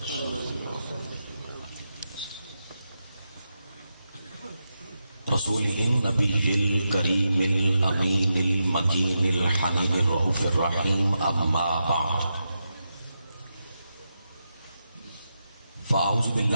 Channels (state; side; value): inverted; both; correlation -0.87